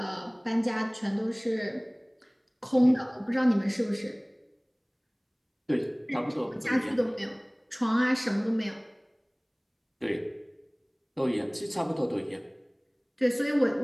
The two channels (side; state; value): both; identical; correlation 1.00